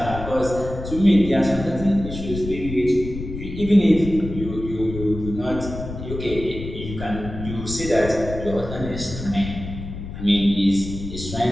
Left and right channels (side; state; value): left; noise; rumble, 9 dB below the sound